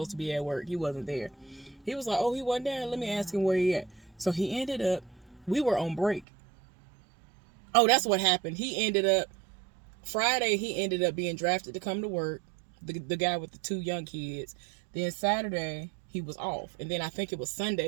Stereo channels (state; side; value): drops out; left; at 6.2 s